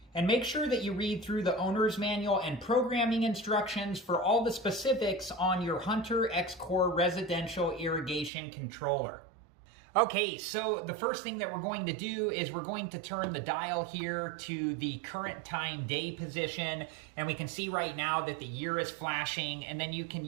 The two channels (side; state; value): left; drops out; at 8.3 s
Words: And make sure that you read through the owner's manual and programming instructions for all the specifics on your Hunter X-Core residential irrigation controller. Okay, so the first thing that we're going to do is we're going to turn the dial here to the current time day position, and we can see right now that the year is flashing, and then you can